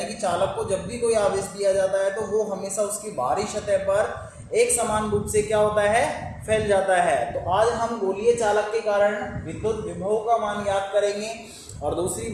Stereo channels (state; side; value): identical; both; correlation 1.00